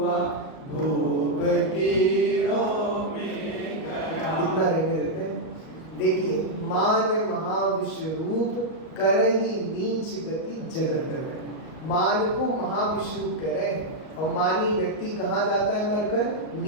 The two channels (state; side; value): late; right; 38 ms